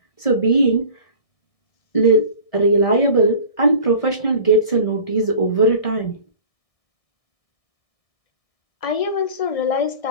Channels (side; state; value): right; late; 1.6 ms